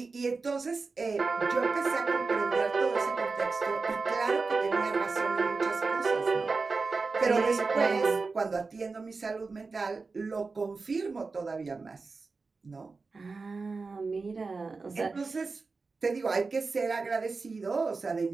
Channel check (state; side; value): quieter; left; 4.2 dB